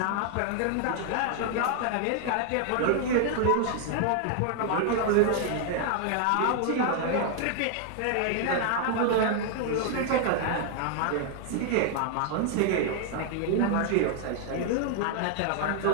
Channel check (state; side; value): different; both; correlation 0.00